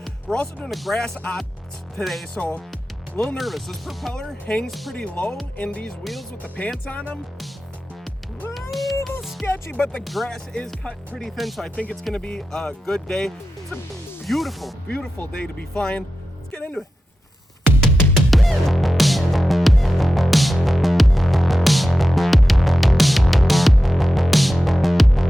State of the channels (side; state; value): both; normal; correlation 0.92